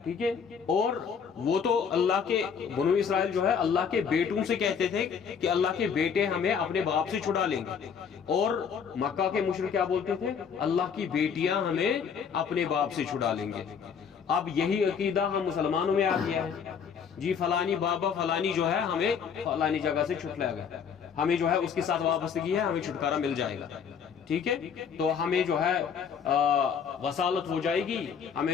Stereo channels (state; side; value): quieter; right; 6.8 dB